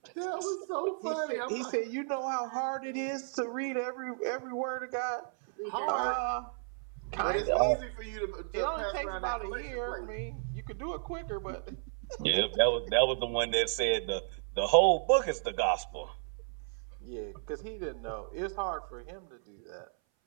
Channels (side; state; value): left; silent; 56 dB below the other